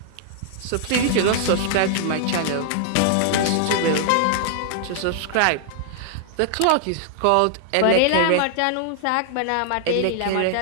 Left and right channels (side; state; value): both; different; correlation -0.01